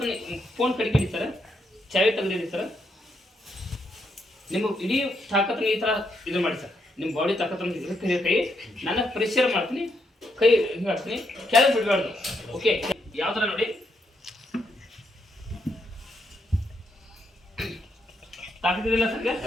ಫೋನ್ ಕಡಿಕಿಡಿ ಸರ್, ಚಾವಿ ತೆಗೆದಿಡಿ ಸರ್. ನಿಮ್ಮ ಇಡೀ ತಾಕತ್ತು ಈ ಥರ ಇದು ಮಾಡಿ ಸರ್. ನಿಮ್ಮ ಬಾಡಿ ತಾಕತ್ತು ಕೈ ನನ್ನ ಪ್ರೆಷರ್ ಮಾಡ್ತೀನಿ, ಕೈ ಹಿಂಗೆ ಹಾಕ್ತೀನಿ, ಕೆಳಗೆ ಬಿಡಬಾರ್ದು. ಓಕೆ. ಯಾವ ಥರ ನೋಡಿ, ತಾಕತ್ತಿದೆಯಲ್ಲ ಸರ್ಗೆ?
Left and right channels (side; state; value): both; normal; correlation 0.78